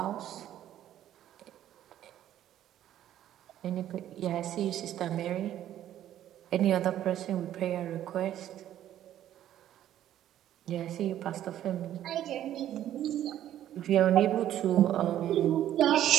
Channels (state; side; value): quieter; left; 11.9 dB